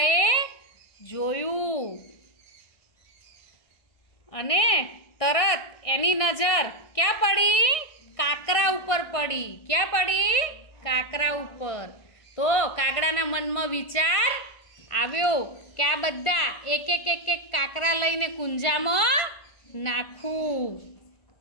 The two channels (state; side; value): late; right; 1.6 ms